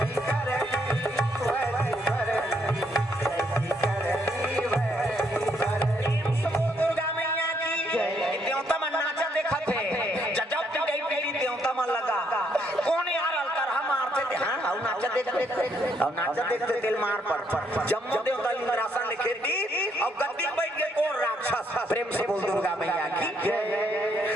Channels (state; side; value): normal; both; correlation 0.73